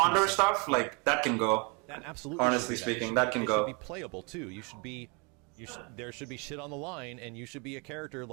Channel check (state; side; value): quieter; left; 32.1 dB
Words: stuff, like that can go. That absolutely. Honestly should be speaking, that can it go. should be playable too. There should be shit on the line, and you should be a character